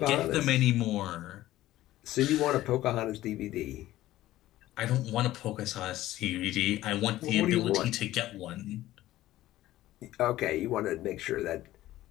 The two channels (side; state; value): right; quieter; 15.3 dB